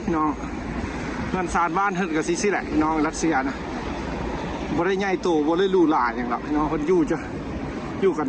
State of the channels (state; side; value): identical; both; correlation 1.00